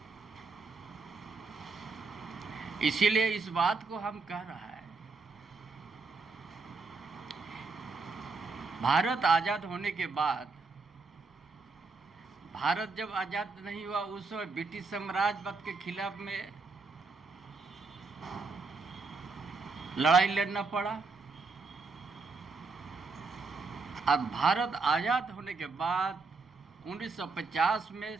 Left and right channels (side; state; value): left; quieter; 4.1 dB